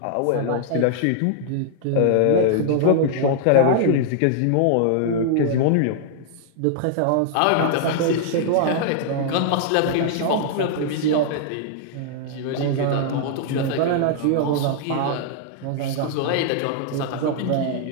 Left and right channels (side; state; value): both; different; correlation -0.01